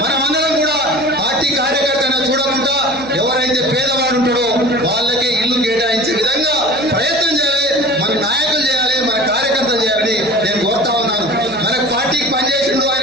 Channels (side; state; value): right; noise; hum, 24 dB below the sound